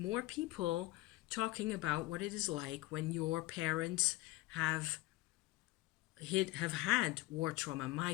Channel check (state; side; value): quieter; right; 18.6 dB